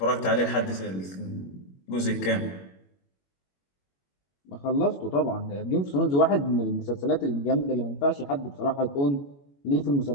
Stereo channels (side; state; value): right; late; 21 ms